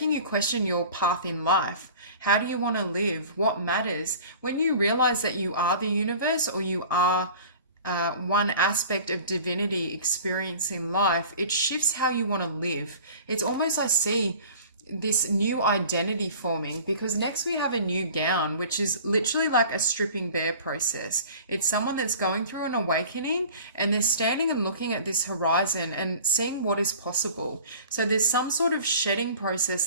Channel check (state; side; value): inverted; both; correlation -0.43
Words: you question your path in life. How do you want to live? What matters? When you realize that you are the universe, or you are one aspect of divinity experiencing life, it shifts how you want to live. It's almost, I see this new identity forming, because next we have a new gown, which is literally like a stripping bare process. It's someone that's going through an awakening, and they're standing and looking at this horizon and seeing what is possible. So there's some sort of shedding process